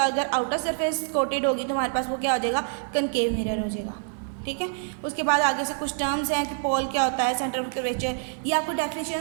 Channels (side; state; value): left; silent; 61 dB below the other